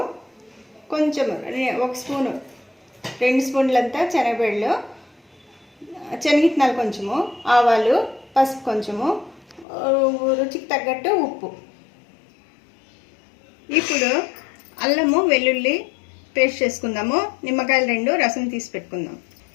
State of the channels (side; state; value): right; drops out; at 9.7 s